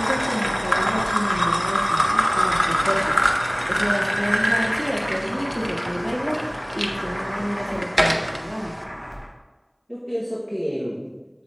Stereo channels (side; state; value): both; identical; correlation 1.00